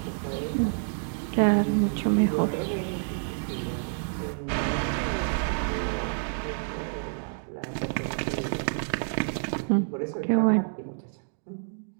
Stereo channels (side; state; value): left; silent; digital silence